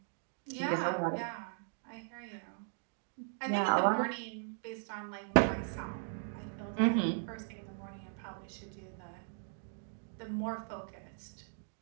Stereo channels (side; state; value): left; silent; digital silence